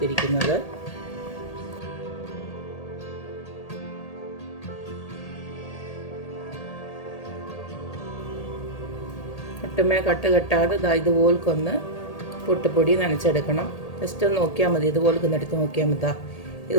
ഒട്ടുമേ കട്ട് കെട്ടാതെ ഇതുപോലൊന്ന് പുട്ടുപൊടി നനച്ചെടുക്കണം. ജസ്റ്റ് ഒന്ന് നോക്കിയാൽ മതി, ഇതുപോലെ എടുത്ത് നോക്കിയാൽ മതി.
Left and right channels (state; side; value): late; right; 1.8 ms